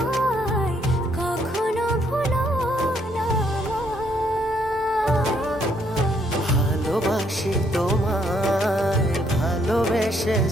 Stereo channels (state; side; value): normal; both; correlation 0.70